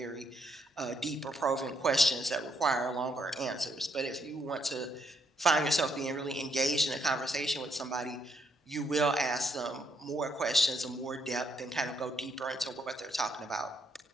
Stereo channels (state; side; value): normal; both; correlation 0.74